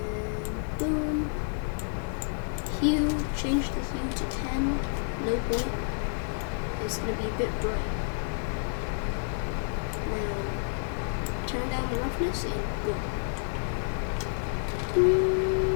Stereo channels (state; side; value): silent; right; digital silence